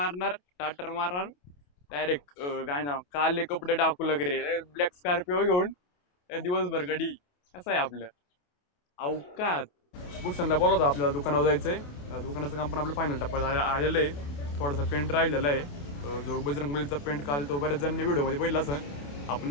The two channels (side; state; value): right; late; 28 ms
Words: स्टार्टर मारणार, डायरेक्ट काय ना काले कपडे टाकू लागले, ब्लॅक स्कॉर्पिओ घेऊन दिवसभर गाडी. कसं आहे आपलं अवकात. भूषणला बोलवतो आपल्याला दुकानावर जायचंय. दुकानाचं काम पण आपलं फायनल टप्प्यात आलेलं आहे. थोडासा पेंट राहिलेला आहे. जो बजरंगबलीचा पेंट काल तो बऱ्याच जणांनी व्हिडिओमध्ये बघितला असेल.